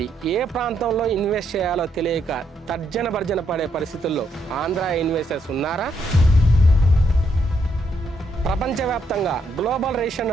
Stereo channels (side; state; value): both; normal; correlation 0.76